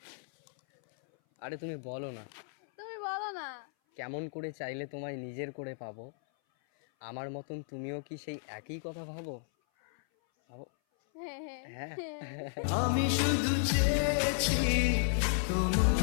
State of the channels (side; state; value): right; silent; 55 dB below the other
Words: আরে তুমি বলো না। তুমি বলো না। কেমন করে চাইলে তোমায় নিজের করে পাবো, আমার মতন তুমিও কি সেই একই কথা ভাবো? ভাবো। হ্যাঁ হ্যাঁ হ্যাঁ। আমি শুধু চেয়েছি